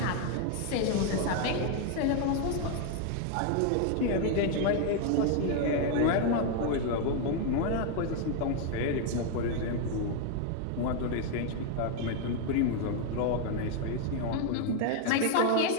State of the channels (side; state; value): both; different; correlation 0.00